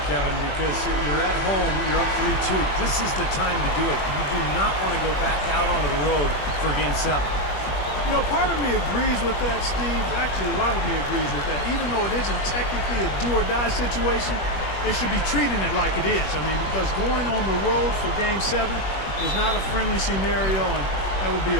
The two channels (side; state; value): right; late; 21 ms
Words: Kevin, because you're at home, you're up 3-2. This is the time to do it. You do not want to go back out onto the road for Game 7. You know, part of me agrees with that, Steve. Actually, a lot of me agrees with that. Even though it isn't technically a do-or-die situation, they should be treating it like it is. I mean, because going on the road for Game 7 is not a friendly scenario, and that would be